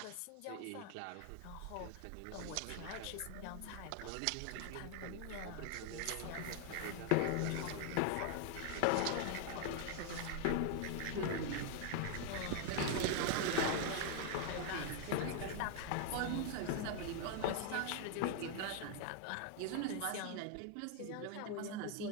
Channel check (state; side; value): different; both; correlation 0.00